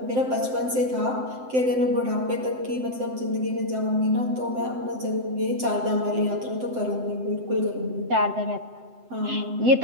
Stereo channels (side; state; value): left; late; 7.8 ms